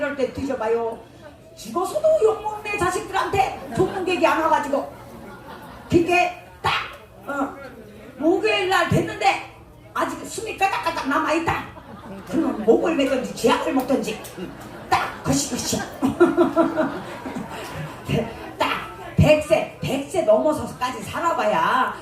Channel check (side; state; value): both; identical; correlation 1.00